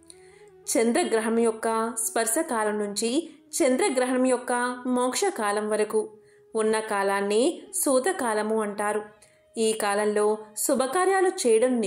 చంద్రగ్రహణం యొక్క స్పర్శకాలం నుంచి చంద్రగ్రహణం యొక్క మోక్షకాలం వరకు ఉన్న కాలాన్ని సూతకాలము అంటారు. ఈ కాలంలో శుభకార్యాలు చేయడం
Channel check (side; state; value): both; identical; correlation 1.00